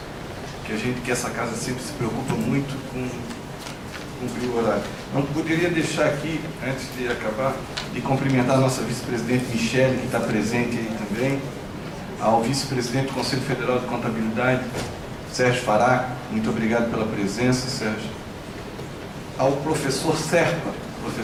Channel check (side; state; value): both; identical; correlation 1.00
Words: que essa casa sempre se preocupa muito com cumprir o horário. Não poderia deixar aqui, antes de acabar, de cumprimentar a nossa vice-presidente Michele, que está presente aí também, ao vice-presidente do Conselho Federal de Contabilidade, Sérgio Fará, muito obrigado pela presença, Sérgio. Ao professor Serpa